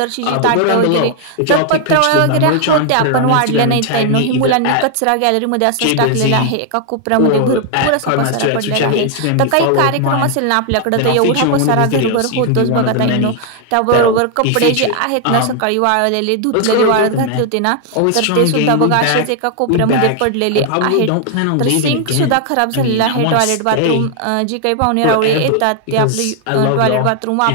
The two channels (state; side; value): different; both; correlation 0.00